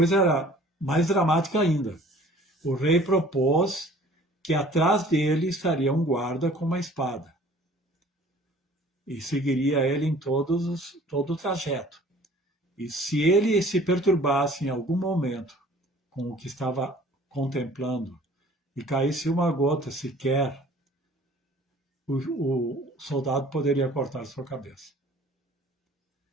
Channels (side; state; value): both; normal; correlation 0.51